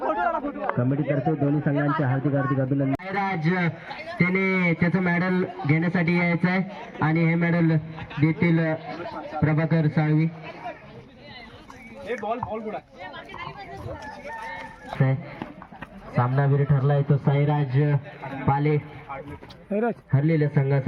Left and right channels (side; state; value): both; identical; correlation 1.00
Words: कमिटी तर्फे दोन्ही संघांचे हार्दिक हार्दिक अभिनंदन. साईराज त्याने त्याचं मेडल घेण्यासाठी यायचं आहे आणि हे मेडल देतील प्रभाकर साळवी. सामनावीर ठरलाय तो साईराज पाले. हरलेल्या